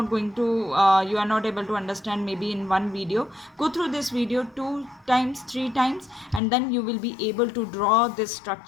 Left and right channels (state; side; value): drops out; right; at 6.4 s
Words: going to you are not able to understand maybe in one video. Go through this video 2 times, 3 times, and then you will be able to draw this